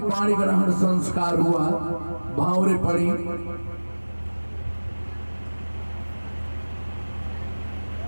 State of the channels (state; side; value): inverted; both; correlation -1.00